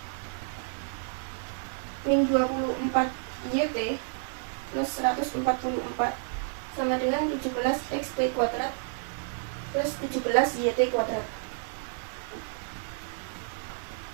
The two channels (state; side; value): silent; left; digital silence